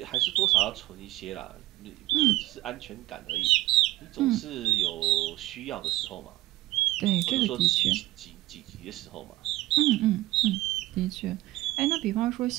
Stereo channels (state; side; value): quieter; left; 17.8 dB